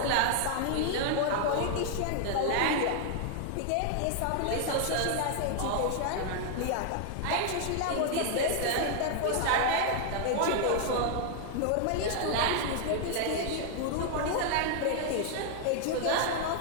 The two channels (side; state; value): both; different; correlation 0.00